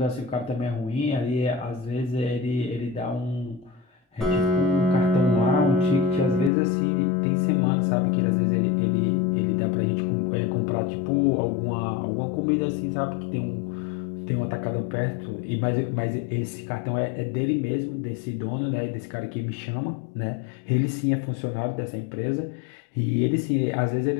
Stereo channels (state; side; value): drops out; right; at 6.5 s